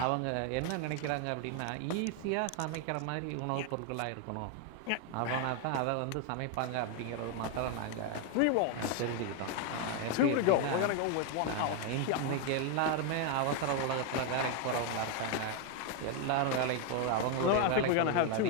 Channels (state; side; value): different; both; correlation 0.01